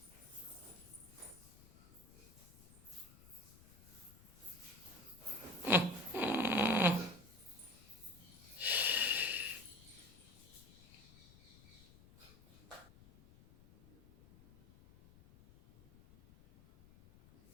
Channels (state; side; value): noise; left; rumble, 22 dB below the sound